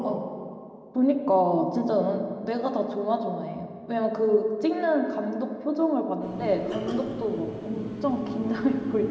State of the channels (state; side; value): identical; both; correlation 1.00